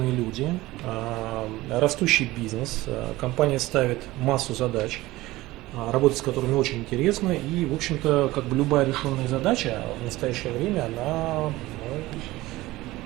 люди, растущий бизнес. Компания ставит массу задач, работать с которыми очень интересно. И, в общем-то, как бы любая решенная задача в настоящее время, она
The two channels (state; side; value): quieter; left; 18.4 dB